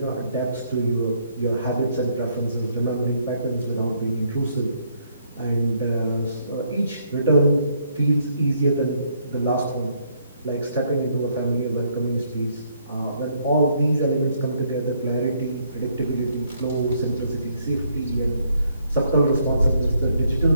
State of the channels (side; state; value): both; inverted; correlation -0.70